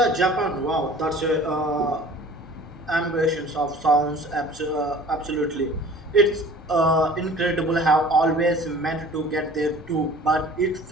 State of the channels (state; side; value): normal; both; correlation 0.46